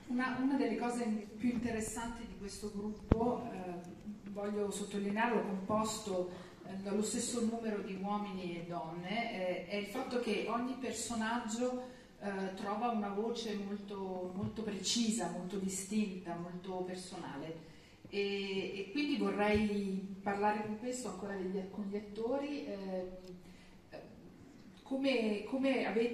Una delle cose più interessanti di questo gruppo, voglio sottolinearlo, composto dallo stesso numero di uomini e donne, è il fatto che ogni personaggio trova una voce molto, molto precisa, molto distinta, molto personale. E quindi vorrei parlare con questo ancora con gli attori. Come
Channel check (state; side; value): identical; both; correlation 1.00